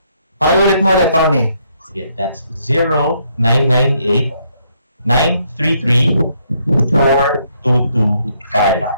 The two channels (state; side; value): inverted; both; correlation -0.72